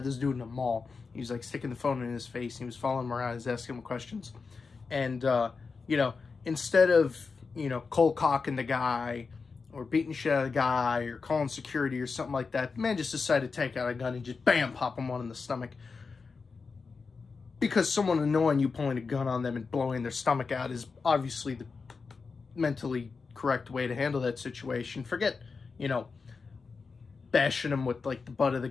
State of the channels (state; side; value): quieter; right; 4.7 dB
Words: this dude in the mall. He was like sticking the phone in his face. He was following him around. He was asking him questions. And, you know, instead of, you know, cold cocking the guy or beating shit out of the guy or calling security or something like that, the man just decided to take out a gun and just bam, pop him one in the stomach. Because someone annoying you pulling a gun on them and blowing their stomach out is obviously the mentally correct way to handle that situation. Forget, you know, bashing him with, like, the butt of the